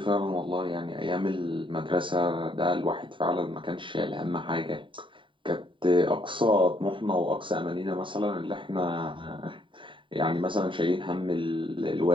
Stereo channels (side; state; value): left; late; 0.24 ms